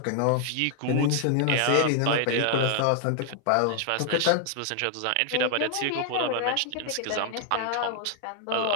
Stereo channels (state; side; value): different; both; correlation 0.00